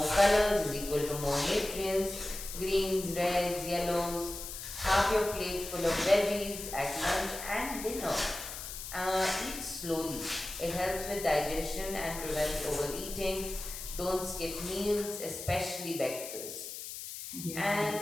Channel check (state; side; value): noise; left; hiss, 9 dB below the sound